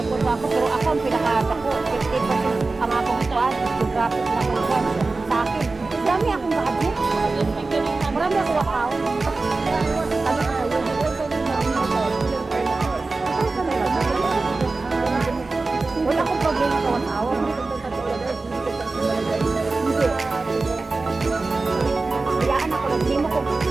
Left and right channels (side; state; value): left; quieter; 3.6 dB